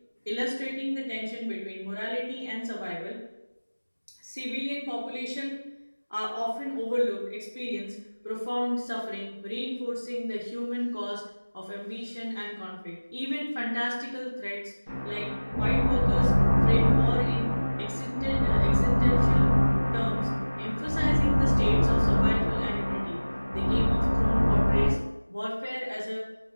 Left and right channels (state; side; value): inverted; both; correlation -1.00